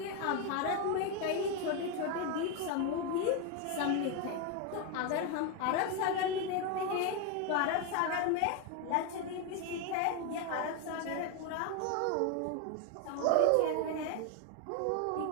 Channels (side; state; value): both; different; correlation 0.01